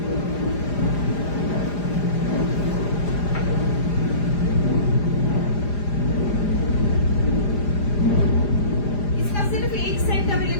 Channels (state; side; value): late; right; 4.9 ms